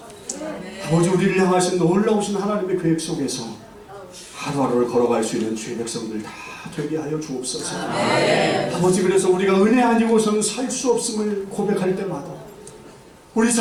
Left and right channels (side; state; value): both; identical; correlation 1.00